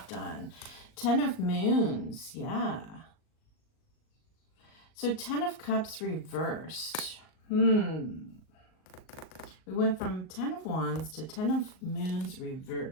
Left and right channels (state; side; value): late; right; 38 ms